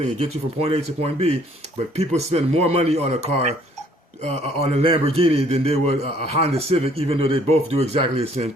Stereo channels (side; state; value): both; normal; correlation 0.61